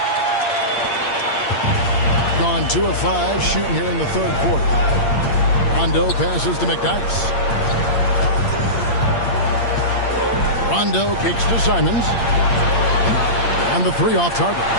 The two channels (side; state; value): right; late; 8.7 ms